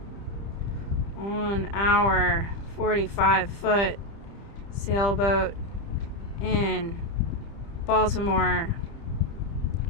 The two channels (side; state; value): right; late; 30 ms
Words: on our 45-foot sailboat in Baltimore.